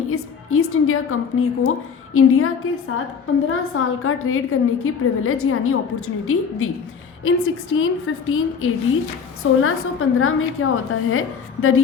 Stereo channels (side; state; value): right; quieter; 6.3 dB